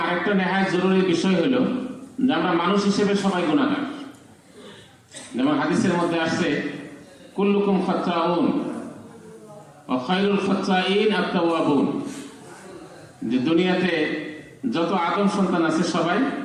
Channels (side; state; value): both; identical; correlation 1.00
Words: আরেকটা নেহায়ত জরুরি বিষয় হলো যে আমরা মানুষ হিসেবে সবাই গুনাহগার। যেমন হাদিসের মধ্যে আসছে, কুল্লুকুম খাত্তাউন ওয়া খায়রুল খাত্তাইন আত-তাওয়াবুন, যে দুনিয়াতে যত আদম সন্তান আছে সবাই